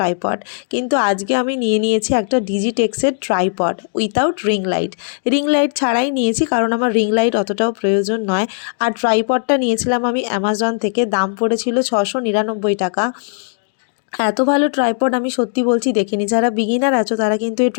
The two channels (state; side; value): silent; right; digital silence